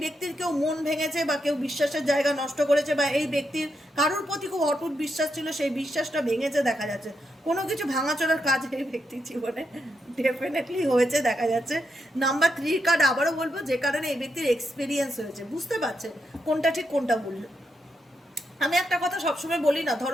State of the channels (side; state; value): both; normal; correlation 0.83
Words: ব্যক্তির কেউ মন ভেঙেছে বা কেউ বিশ্বাসের জায়গা নষ্ট করেছে, বা এই ব্যক্তির কারুর প্রতি খুব অটুট বিশ্বাস ছিল, সেই বিশ্বাসটা ভেঙেছে দেখা যাচ্ছে। কোনো কিছু ভাঙাচোরার কাজ এই ব্যক্তির জীবনে ডেফিনেটলি হয়েছে দেখা যাচ্ছে। নাম্বার 3 কার্ড আবারও বলবো, যে কারণে এই ব্যক্তির এক্সপিরিয়েন্স হয়েছে, বুঝতে পারছে কোনটা ঠিক কোনটা ভুল। আমি একটা কথা সবসময় বলি না,